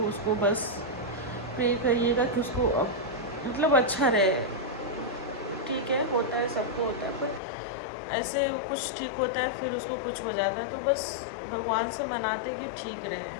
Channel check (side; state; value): right; drops out; at 7.4 s